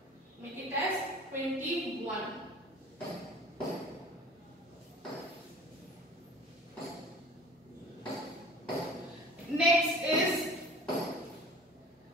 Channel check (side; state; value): both; normal; correlation 0.45